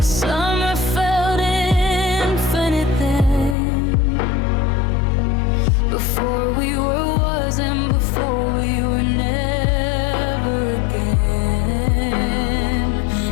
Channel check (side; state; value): right; drops out; at 3.6 s